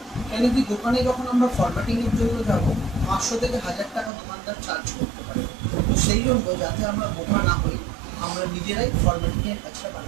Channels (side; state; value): left; drops out; at 4.1 s